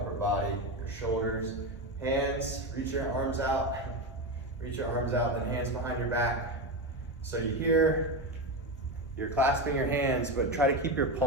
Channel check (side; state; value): both; normal; correlation 0.16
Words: body, your shoulders. Hands, reach your arms out. Reach your arms out, then hands behind your back. So you're clasping your hands, but try to keep your